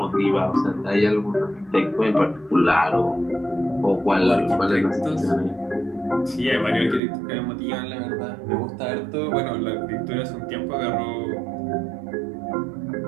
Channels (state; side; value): drops out; left; at 7.0 s